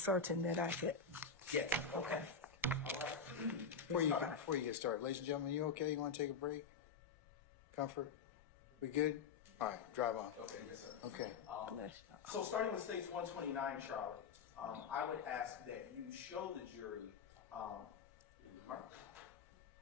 that I could. Yes. Okay. All right. Before you get started, ladies and gentlemen, you okay? You want to take a break? Comfort? We good? All right, drive on. Okay, yes, sir. Okay. So starting with states 129, Charlie, I would ask that you show the jury,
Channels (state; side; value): quieter; right; 5.5 dB